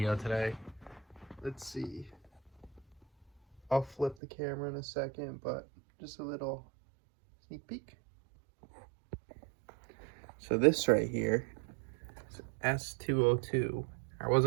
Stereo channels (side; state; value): left; drops out; at 4.2 s